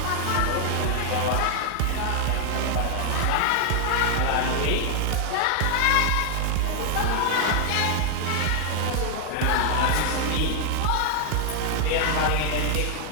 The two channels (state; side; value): different; both; correlation 0.00